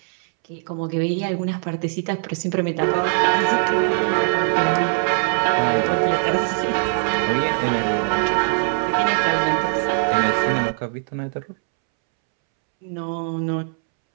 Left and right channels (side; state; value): left; silent; 65 dB below the other